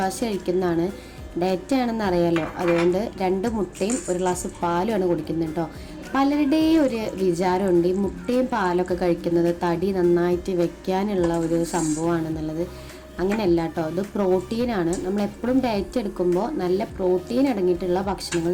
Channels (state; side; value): identical; both; correlation 1.00